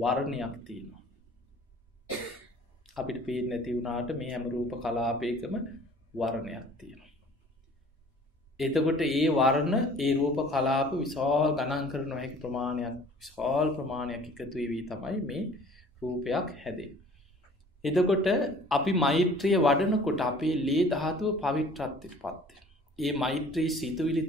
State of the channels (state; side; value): normal; both; correlation 0.50